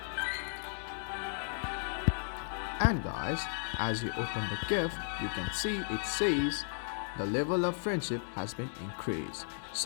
And guys, as you open the gift, you can see it says the level of friendship has been increased.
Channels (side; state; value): right; silent; digital silence